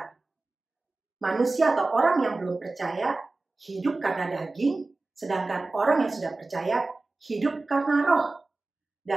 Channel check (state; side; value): quieter; left; 3.3 dB